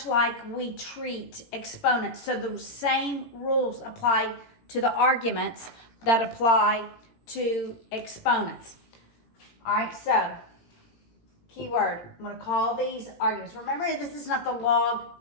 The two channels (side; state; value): right; late; 18 ms